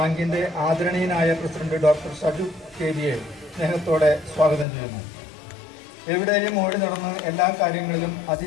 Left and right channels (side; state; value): right; drops out; at 4.7 s